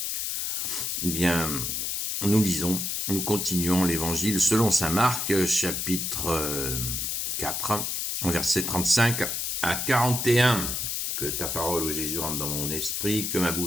Eh bien, nous continuons l'Évangile selon saint Marc, chapitre 4, versets 35 à 41. Que ta parole, ô Jésus, rentre dans mon esprit, que ma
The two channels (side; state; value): left; noise; hiss, 1 dB below the sound